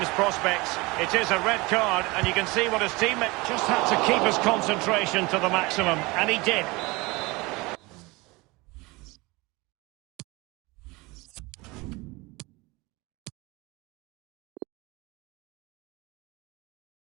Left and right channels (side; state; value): left; quieter; 23.8 dB